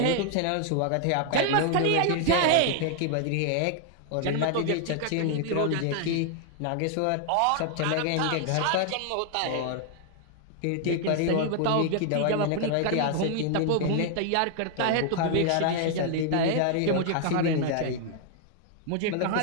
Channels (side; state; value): both; different; correlation 0.00